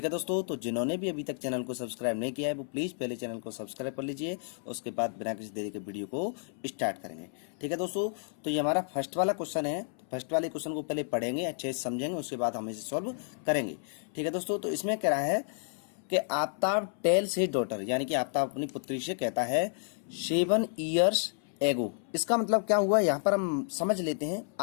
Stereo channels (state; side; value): silent; right; 57 dB below the other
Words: है दोस्तों, तो जिन्होंने भी अभी तक चैनल को सब्सक्राइब नहीं किया है वो प्लीज़ पहले चैनल को सब्सक्राइब कर लीजिए, उसके बाद बिना किसी देरी के वीडियो को स्टार्ट करेंगे। ठीक है दोस्तों, तो ये हमारा फर्स्ट वाला क्वेश्चन है। फर्स्ट वाले क्वेश्चन को पहले पढ़ेंगे, अच्छे से समझेंगे, उसके बाद हम इसे सॉल्व करेंगे। ठीक है दोस्तों, तो इसमें कह रहा है कि आफ्ताब टेल्स हिज डॉटर, यानी कि आफ्ताब अपनी पुत्री से कहता है 7 years एगो। इसका मतलब क्या हुआ, यहाँ पर हम समझ लेते हैं।